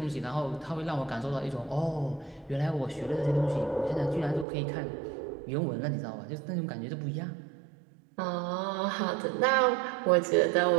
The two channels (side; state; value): left; drops out; at 4.5 s